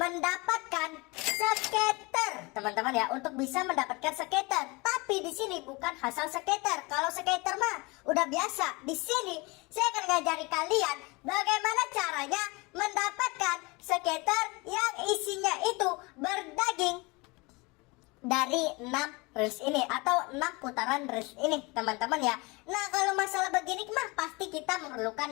skater, teman-teman ya, untuk bisa mendapatkan skater. Tapi di sini bukan asal skater. Kalau skater mah udah biasa. Di sini saya akan ngajari kalian bagaimana caranya mendapatkan skater yang isinya itu berdaging dari 6 reels ini atau 6 putaran reels ini, teman-teman ya. Nah, kalau masalah begini mah pasti kita memerlukan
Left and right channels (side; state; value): right; quieter; 25.9 dB